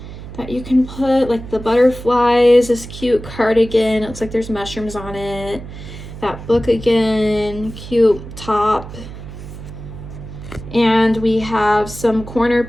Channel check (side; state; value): right; noise; hum, 13 dB below the sound